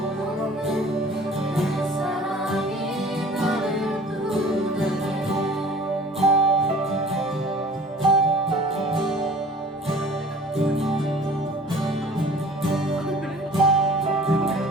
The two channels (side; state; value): both; normal; correlation 0.47